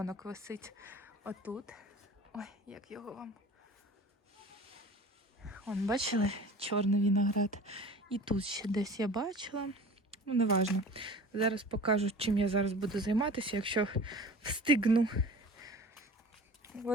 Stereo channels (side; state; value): both; normal; correlation 0.41